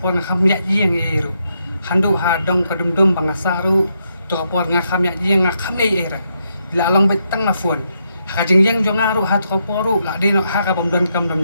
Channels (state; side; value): inverted; both; correlation -0.80